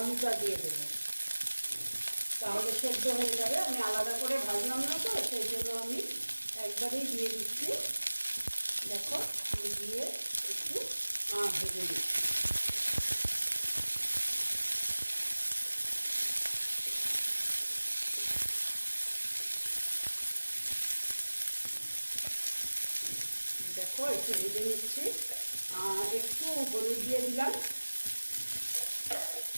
দিয়ে দেবো, তাহলে সেদ্ধ হয়ে যাবে। আমি আলাদা করে ভাজলাম না তো, সেই জন্য আমি একবারেই দিয়ে দিচ্ছি। দেখো, আমি দিয়ে একটু ভেজে দিচ্ছি। দেখো, একটু ভেজে নিচ্ছি। একটু হলুদ দিয়ে দিলাম।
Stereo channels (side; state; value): both; inverted; correlation -1.00